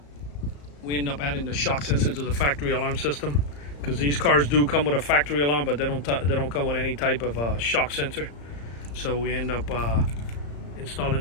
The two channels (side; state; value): right; late; 34 ms